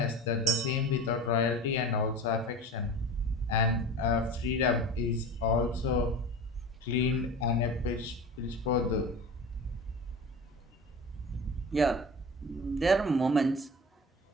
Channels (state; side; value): normal; both; correlation 0.33